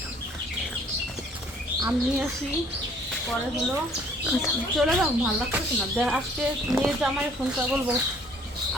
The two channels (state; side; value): normal; both; correlation 0.58